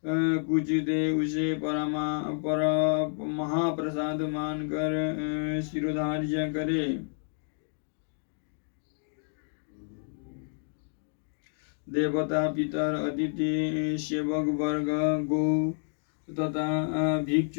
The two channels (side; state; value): right; silent; 58 dB below the other